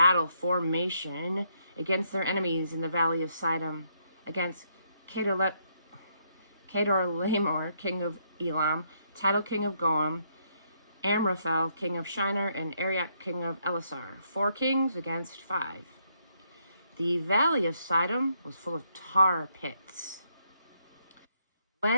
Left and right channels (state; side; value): inverted; both; correlation -0.74